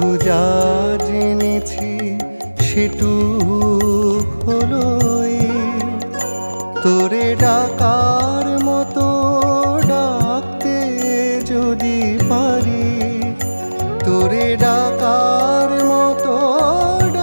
যা জেনেছি সেটুক হলো তোরে ডাকার মতো ডাকতে যদি পারি, তোরে ডাকার মতো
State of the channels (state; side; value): inverted; both; correlation -1.00